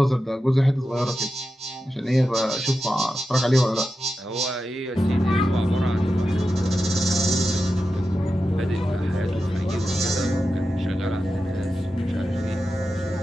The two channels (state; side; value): normal; both; correlation 0.90